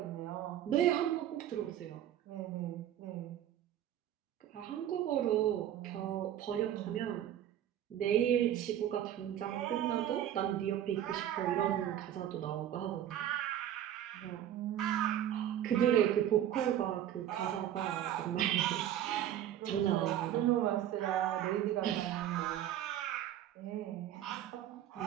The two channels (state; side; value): quieter; left; 11.3 dB